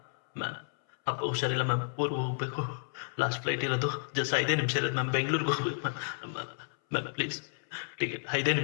ಅಪ್ಪ ಹುಷಾರಿಲ್ಲ ಮ್ಯಾಮ್. ಊರಿಗೆ ಹೋಗ್ಬೇಕು. ಲಾಸ್ಟ್ ಫ್ಲೈಟ್ ಇರೋದು. ಜಸ್ಟ್ 5 ನಿಮಿಷ ಇರೋದು ಮ್ಯಾಮ್. ಬೆಂಗಳೂರಿಗೆ ಹೋಗ್ಬೇಕು ಮ್ಯಾಮ್. ಪ್ಲೀಸ್ ಟಿಕೆಟ್ 5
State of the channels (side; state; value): right; silent; 57 dB below the other